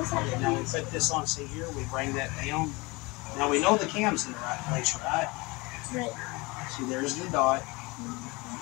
has Now we put this on. See here, we bring that down. Now we know the cam's in the right place, right? Right. See, there's the dot.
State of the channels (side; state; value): right; quieter; 24.7 dB